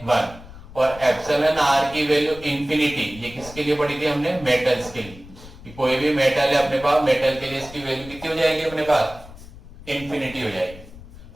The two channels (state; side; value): noise; left; rumble, 17 dB below the sound